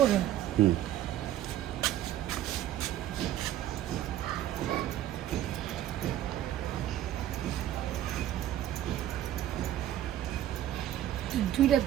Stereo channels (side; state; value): left; quieter; 12.3 dB